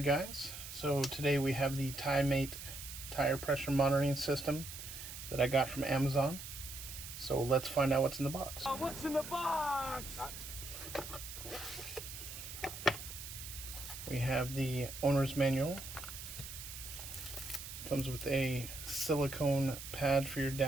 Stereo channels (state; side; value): noise; right; hiss, 10 dB below the sound